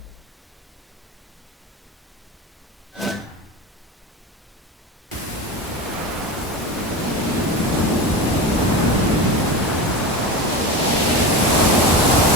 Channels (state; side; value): normal; both; correlation 0.25